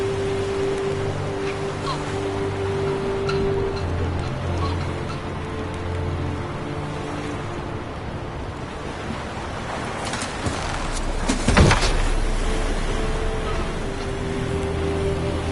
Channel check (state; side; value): identical; both; correlation 1.00